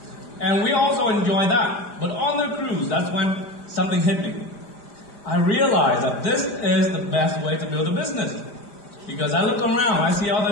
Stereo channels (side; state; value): right; late; 5.0 ms